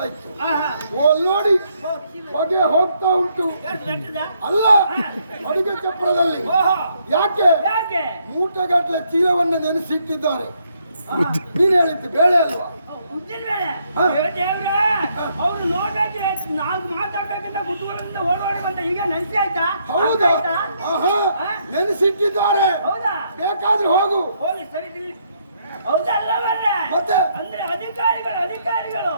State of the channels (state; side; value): inverted; both; correlation -0.73